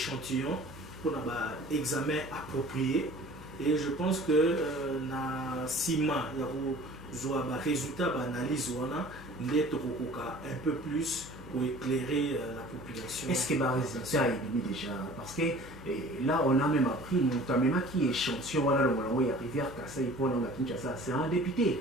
pour un examen approprié. Et je pense que na Sima, il y a un résultat d'analyse un peu plus pour éclairer la population. Est-ce que le résultat est mis déjà? Parce que là, on a même appris, notamment qui échantillon, voilà, il y a Rivière Kasai, c'est un député.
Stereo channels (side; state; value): both; normal; correlation 0.46